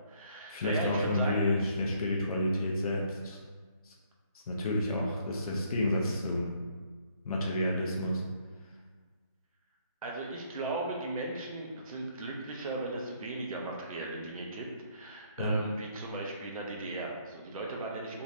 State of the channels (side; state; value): both; inverted; correlation -0.67